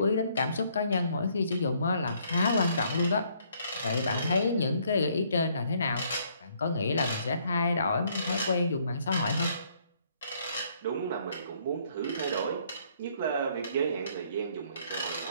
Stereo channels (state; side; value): inverted; both; correlation -0.66